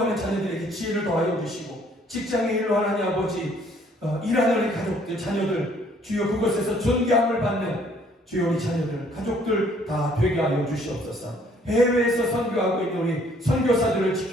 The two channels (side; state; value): both; normal; correlation 0.62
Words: 자녀들에게 지혜를 더하여 주시고 직장의 일로 하나님 아버지 일하는 우리 가족들, 자녀들 주여 그곳에서 존경함을 받는 주여 우리 자녀들, 가족들 다 되게 하여 주시옵소서. 해외에서 선교하고 있는 우리 선교사들을